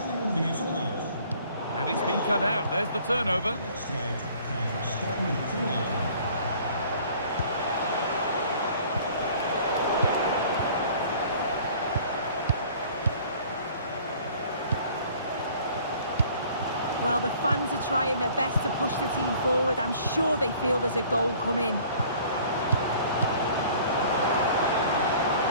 weer verlaat. And it's been cut out. There's the turnover. De wedstrijd gaat het stadion verlaten. Well, the fans fans are trying their best to push the team forward. I'm sure they feel there's a goal coming.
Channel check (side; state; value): both; inverted; correlation -0.53